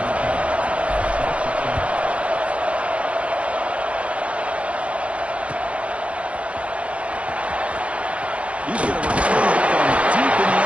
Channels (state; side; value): late; left; 0.062 ms